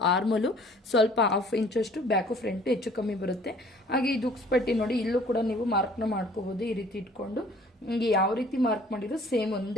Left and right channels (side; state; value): both; normal; correlation 0.54